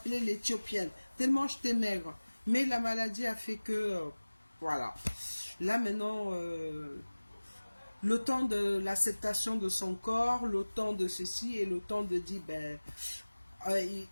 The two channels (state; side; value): inverted; both; correlation -1.00